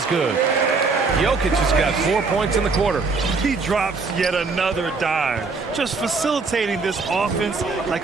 good. Jokic has got 4 points in the quarter. He drops yet another dime, just facilitating this offense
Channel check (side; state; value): left; quieter; 4.3 dB